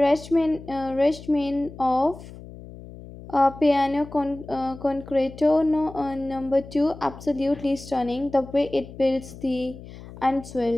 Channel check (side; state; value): left; noise; hum, 16 dB below the sound